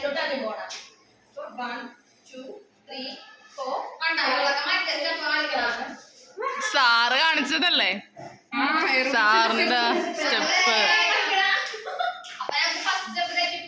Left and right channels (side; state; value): both; identical; correlation 1.00